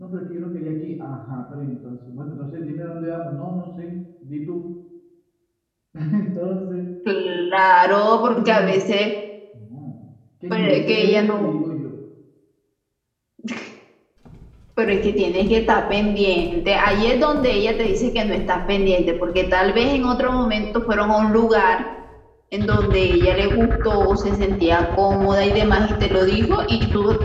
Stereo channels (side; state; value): both; identical; correlation 1.00